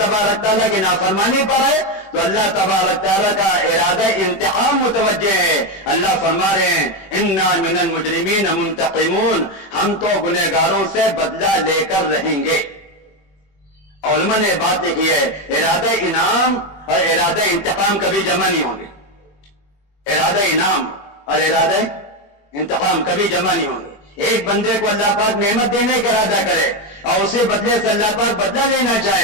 تعالیٰ کی نافرمانی پر ہے تو اللہ تبارک تعالیٰ کا ارادہ انتقام متوجہ ہے. اللہ فرما رہے ہیں انا من المجرمین منتقمون، ہم تو گنہگاروں سے بدلہ لے کر رہیں گے. علماء نے بات لکھی ہے ارادہ انعام اور ارادہ انتقام کبھی جمع نہیں ہوں گے. ارادہ انعام اور ارادہ انتقام کبھی جمع نہیں ہوں گے. ایک بندے کو اللہ پاک نعمت دینے کا ارادہ کرے اور اسی بدلے سے اللہ پاک بدلہ لینا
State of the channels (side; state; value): right; late; 21 ms